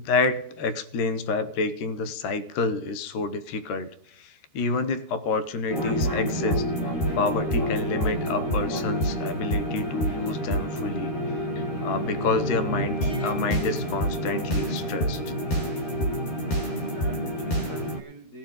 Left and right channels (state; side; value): late; right; 13 ms